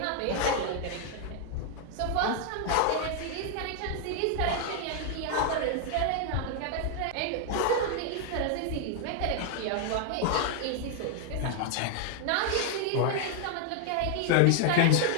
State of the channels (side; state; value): both; different; correlation 0.00